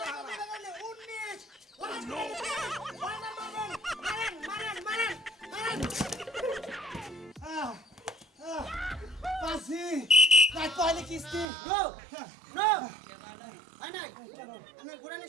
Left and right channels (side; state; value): left; drops out; at 11.5 s